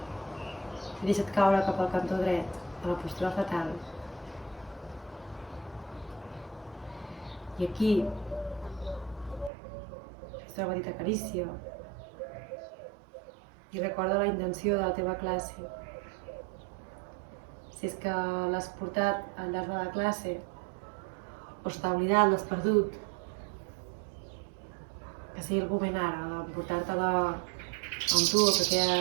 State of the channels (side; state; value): left; drops out; at 9.5 s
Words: I deixa't caure cap al cantó dret, a la postura fetal. I aquí, fes una petita carícia. I recorda la intenció de la teva classe. Si és que l'has portat al llarg de la classe, o s'ha oblidat, l'has perdut, que sigui el moment ara de portar-te-la amb tu el que queda